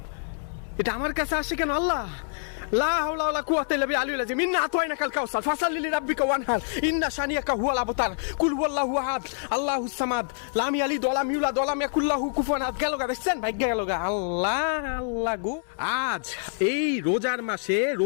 এটা আমার কাছে আসে কেন? আল্লাহ, লা হাওলা ওয়ালা কুওয়াতা ইল্লা বিল্লাহ আলিয়্যিল আযীম। ইন্না আতাইনাকাল কাউসার ফাসাল্লি লিরাব্বিকা ওয়ানহার ইন্না শানিয়াকা হুয়াল আবতার কুল হুয়াল্লাহু আহাদ আল্লাহুস সামাদ লাম ইয়ালিদ ওয়া লাম ইউলাদ ওয়া লাম ইয়াকুল লাহু কুফুয়ান আহাদ। গেল গা, দেখছেন ভাগ্য গেল গা। আল্লাহ আল্লাহ গো, আজ এই রোজার মাসে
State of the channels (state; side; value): silent; right; 61 dB below the other